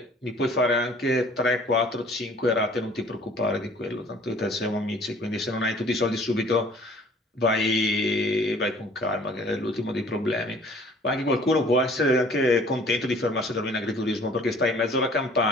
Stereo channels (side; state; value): both; normal; correlation 0.53